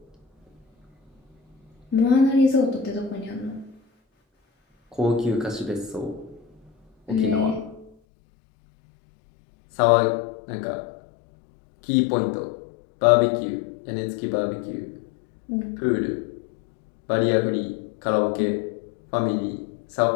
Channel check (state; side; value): drops out; right; at 7.9 s